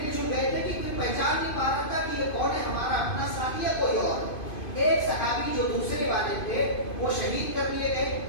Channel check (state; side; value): late; right; 2.5 ms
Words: جل گئے تھے کہ کوئی پہچان نہیں پا رہا تھا کہ یہ کون ہے, ہمارا اپنا ساتھی یا کوئی اور. ایک صحابی جو دوسرے والے تھے وہ شہید کر دیے گئے,